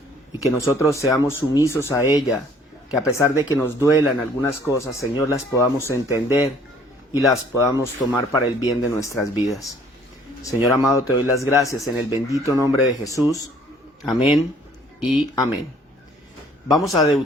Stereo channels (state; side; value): normal; both; correlation 0.58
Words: y que nosotros seamos sumisos a ella, que a pesar de que nos duelan algunas cosas, Señor, las podamos entender y las podamos tomar para el bien de nuestras vidas. Señor amado, te doy las gracias en el bendito nombre de Jesús. Amén y amén. Vamos a